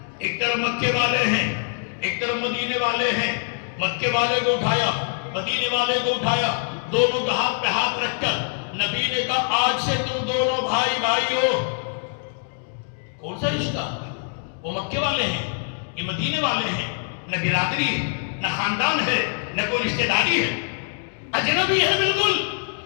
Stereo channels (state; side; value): silent; right; 56 dB below the other